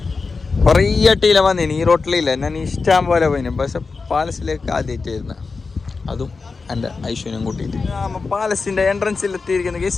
കുറേ അട്ടിയില വന്നിന്. ഈ റോട്ടിലില്ല, ഞാൻ ഇഷ്ടം പോലെ പോയിന്. പക്ഷെ പാലസിലേക്ക് ആദ്യമായിട്ട് വരുന്നത്, അതും എൻ്റെ ഐശ്വര്യം കൂട്ടിയിട്ട്. പാലസിൻ്റെ എൻട്രൻസിൽ എത്തിയിരിക്കുന്ന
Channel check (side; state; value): right; quieter; 4.4 dB